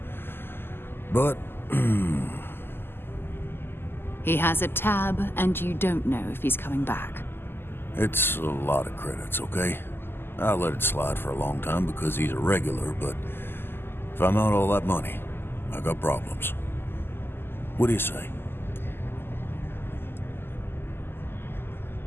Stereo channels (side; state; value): right; late; 0.11 ms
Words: But, He has a tab, and you don't know if he's coming back. it's a lot of credits, okay? I let it slide for a long time because he's a regular, but if I'm out all that money, I got problems. What do you say?